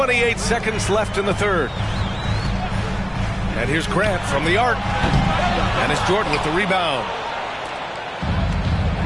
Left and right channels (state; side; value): identical; both; correlation 1.00